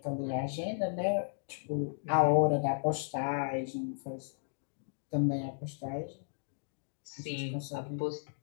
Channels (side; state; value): right; silent; digital silence